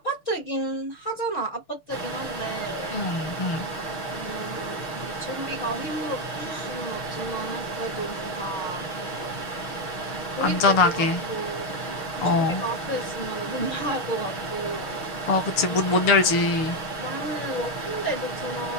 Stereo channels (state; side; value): late; right; 6.5 ms